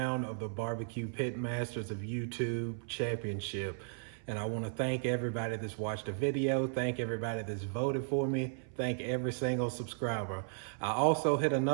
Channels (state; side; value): silent; left; 54 dB below the other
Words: of the Barbecue Pit Masters of YouTube Championship. And I want to thank everybody that's watched the video. Thank everybody that's voted for me. Thank every single subscriber. I also hit